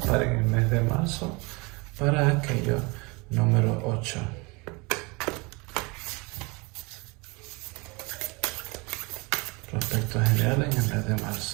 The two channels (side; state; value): left; quieter; 27.3 dB